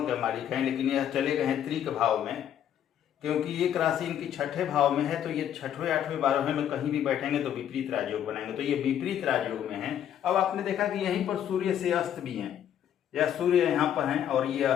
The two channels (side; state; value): right; quieter; 10.0 dB